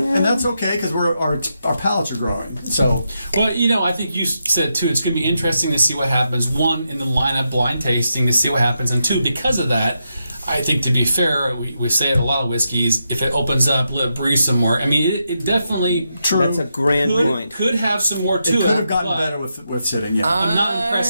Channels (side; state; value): both; inverted; correlation -0.84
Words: that's okay because our palates are growing. So, well, I think you said too. It's going to be interesting to see what happens. One, in the lineup, blind tasting to see what happens, and two, because of that, I think to be fair, we say it a lot of whiskeys. If it opens up, let it breathe some more. I mean, it definitely That's a grand point. Could have some more to it. It could have gotten better with sitting. Yeah, I'm not